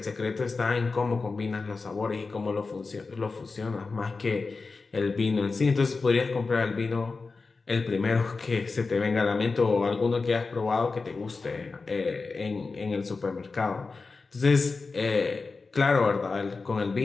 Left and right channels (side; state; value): right; quieter; 4.2 dB